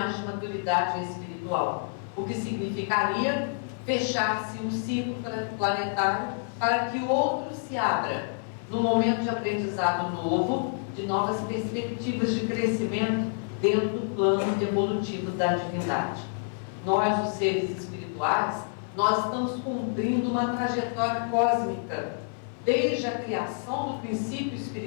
de maturidade espiritual, o que significaria fechar-se um ciclo planetário para que o outro se abra no momento de aprendizado novo, de novas perspectivas de crescimento dentro do plano evolutivo da divindade. Nós, os seres espirituais, nós estamos cumprindo uma trajetória cósmica, desde a criação do princípio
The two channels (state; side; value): silent; right; 56 dB below the other